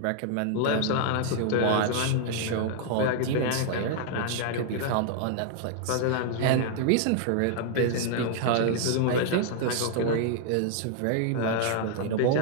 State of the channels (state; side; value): different; both; correlation 0.00